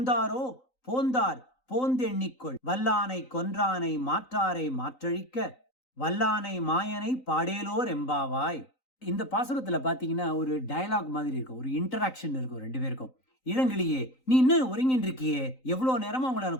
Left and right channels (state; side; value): late; right; 3.9 ms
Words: போந்தார் போந்தெண்ணிக்கொள். வல்லானை கொன்றானை மாற்றாரை மாற்றழிக்க வல்லானை மாயனை பாடேலோர் எம்பாவாய். இந்த பாசுரத்துல பாத்தீங்கன்னா ஒரு டயலாக் மாதிரி இருக்கும், ஒரு இன்டராக்ஷன் இருக்கும் ரெண்டு பேருக்கும். இளங்கிளியே நீ இன்னும் ஒருங்கின்னு இருக்கியே, எவ்வளவு நேரமா உங்களை